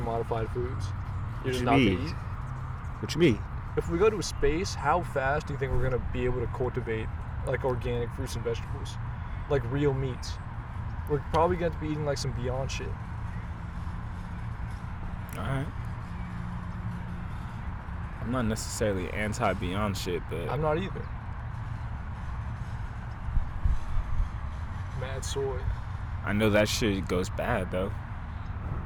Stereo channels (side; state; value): both; identical; correlation 1.00